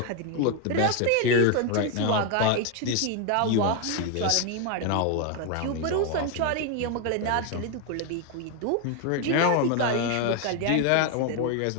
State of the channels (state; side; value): different; both; correlation 0.01